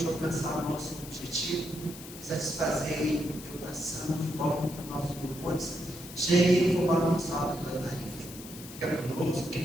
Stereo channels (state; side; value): noise; left; hiss, 14 dB below the sound